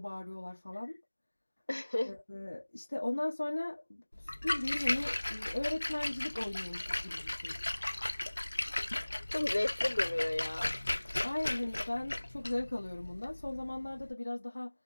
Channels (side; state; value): both; inverted; correlation -1.00